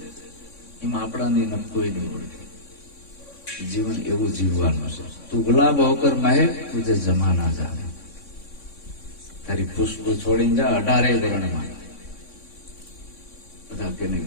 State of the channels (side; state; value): right; late; 3.6 ms